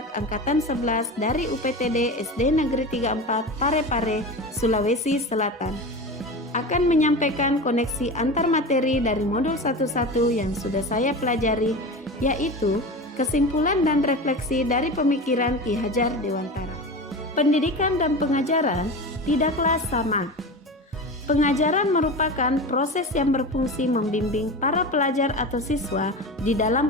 angkatan 11 dari UPTD SD Negeri 34 Parepare, Sulawesi Selatan, akan menyampaikan koneksi antar materi dari modul 11 yang sudah saya pelajari, yaitu kesimpulan dan refleksi dari pemikiran Ki Hajar Dewantara. Pendidikan dan pengajaran tidaklah sama. Pengajaran merupakan proses yang berfungsi membimbing para pelajar atau siswa di dalam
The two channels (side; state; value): both; normal; correlation 0.28